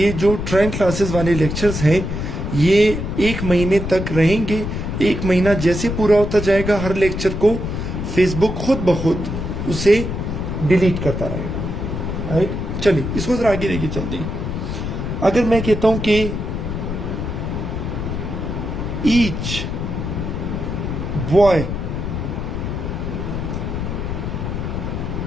जो ट्रेंड क्लासेस वाले लेक्चर्स हैं ये 1 महीने तक रहेंगे। 1 महीना जैसे पूरा होता जाएगा हर लेक्चर को फेसबुक खुद ब खुद उसे डिलीट करता रहेगा। राइट, चलिए इसको जरा आगे लेके चलते हैं। अगर मैं कहता हूं कि each boy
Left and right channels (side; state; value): left; noise; rumble, 4 dB below the sound